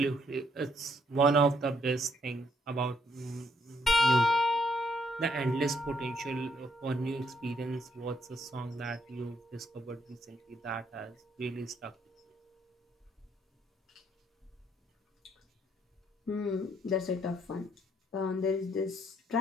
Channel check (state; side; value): normal; both; correlation 0.70